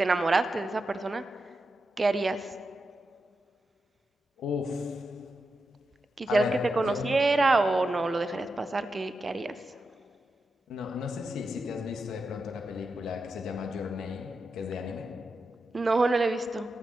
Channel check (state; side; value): normal; both; correlation 0.88